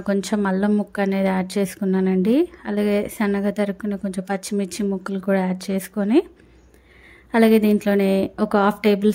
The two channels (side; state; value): both; identical; correlation 1.00